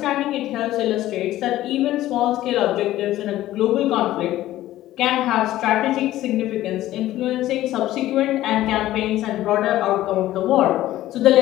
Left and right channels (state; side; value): quieter; right; 14.7 dB